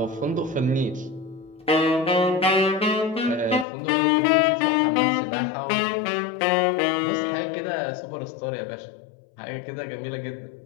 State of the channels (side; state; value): right; drops out; at 3.7 s